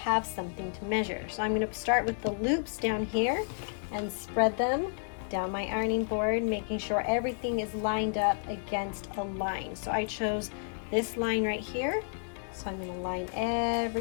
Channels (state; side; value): silent; right; 57 dB below the other